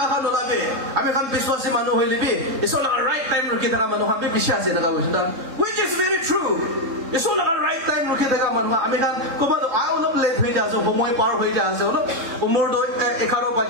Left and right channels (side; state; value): left; late; 3.7 ms